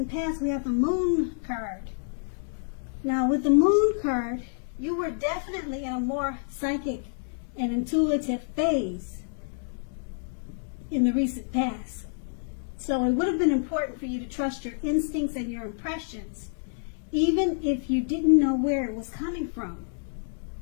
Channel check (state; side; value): silent; right; digital silence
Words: past, we have the moon card. Now with the moon card, you were definitely in a more psychic and intuitive phase in the recent past. So it would have been important for you to trust your instincts and your impressions, even if you didn't know where it was coming from.